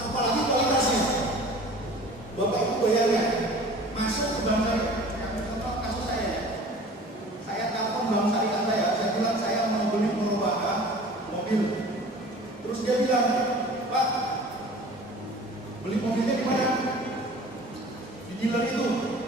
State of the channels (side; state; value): both; normal; correlation 0.43